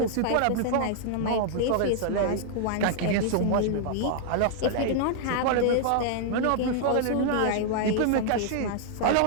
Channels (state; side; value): different; both; correlation -0.01